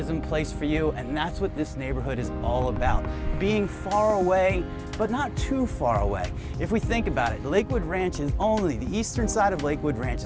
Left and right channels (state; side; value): identical; both; correlation 1.00